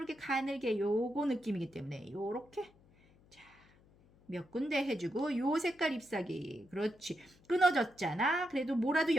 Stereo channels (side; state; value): left; noise; hum, 28 dB below the sound